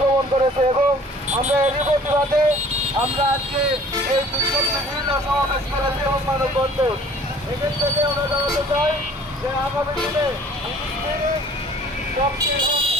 করেছে এবং আমরা এরই প্রতিবাদে আমরা আজকে এই বিক্ষোভ মিছিল সমাবেশ করেছি এবং মানববন্ধন। এখান থেকে আমরা জানাতে চাই যে আগামী দিনে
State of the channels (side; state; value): both; normal; correlation 0.51